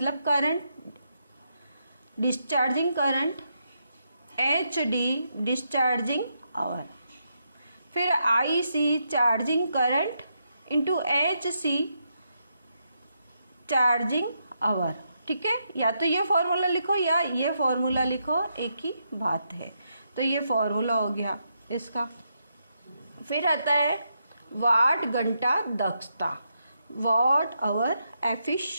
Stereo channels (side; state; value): both; inverted; correlation -0.81